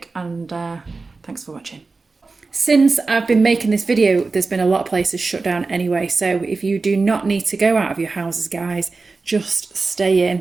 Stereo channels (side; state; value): left; quieter; 3.9 dB